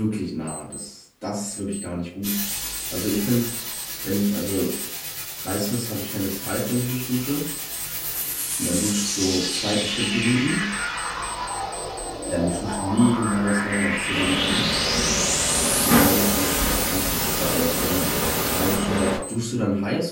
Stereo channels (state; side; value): identical; both; correlation 1.00